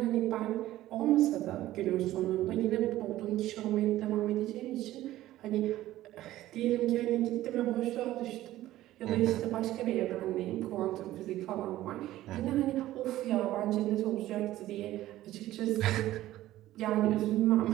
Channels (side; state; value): left; quieter; 14.9 dB